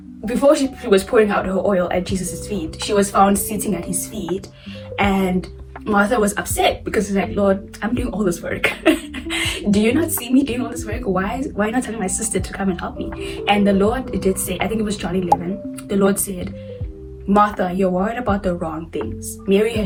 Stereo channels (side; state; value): both; identical; correlation 1.00